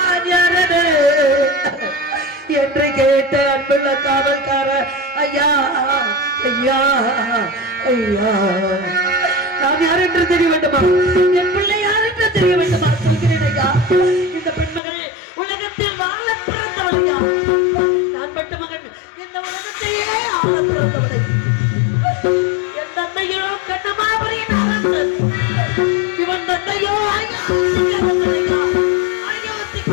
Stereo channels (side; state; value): right; drops out; at 14.8 s